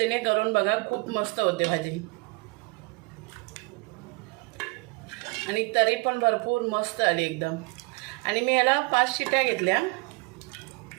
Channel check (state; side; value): quieter; left; 28.4 dB